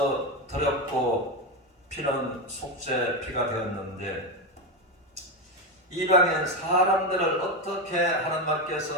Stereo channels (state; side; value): normal; both; correlation 0.13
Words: 드렸고 피는 속죄 피가 되었는데 이방인 사람들을 어떻게 하나님